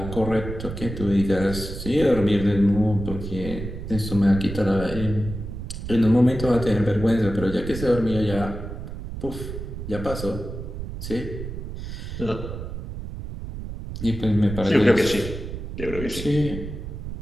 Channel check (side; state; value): right; noise; rumble, 8 dB below the sound